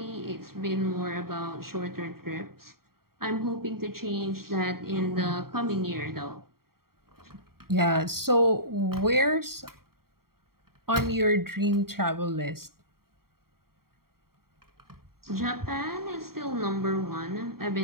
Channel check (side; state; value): left; late; 0.93 ms